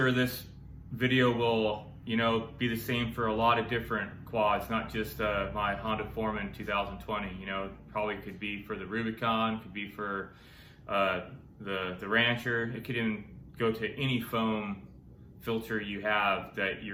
this video will, be the same for a lot of different quads, not just my Honda Foreman 2020. Probably could be for the Rubicon, could be for the Rancher. It could even go to any foam filter you have that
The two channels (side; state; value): both; identical; correlation 1.00